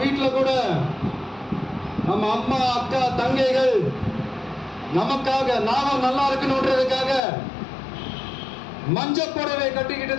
வீட்டில் கூட நம்ம அம்மா, அக்கா, தங்கைகள் நமக்காக நாம நல்லா இருக்கணும்ன்றதுக்காக மஞ்சள் புடவை கட்டிக்கிட்டு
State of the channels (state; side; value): drops out; right; at 7.2 s